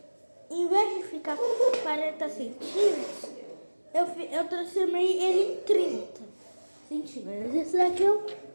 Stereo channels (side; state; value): both; inverted; correlation -1.00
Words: em vez de ficar 40 centímetros, eu transformei ele em 30 centímetros. Esse daqui eu